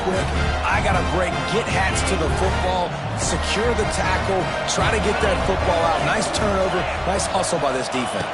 quick. I got to break, get hats to the football, secure the tackle, try to get that football out. Nice turnover, nice hustle by this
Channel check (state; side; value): identical; both; correlation 1.00